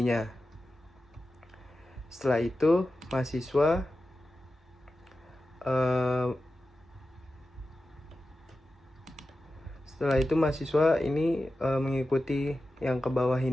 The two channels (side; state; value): both; normal; correlation 0.93